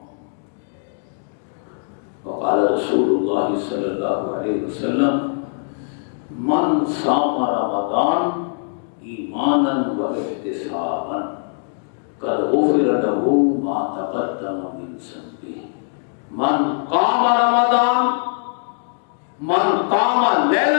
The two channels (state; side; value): silent; right; digital silence